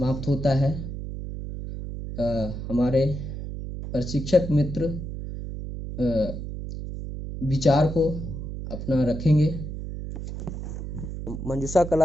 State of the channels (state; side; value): noise; right; hum, 7 dB below the sound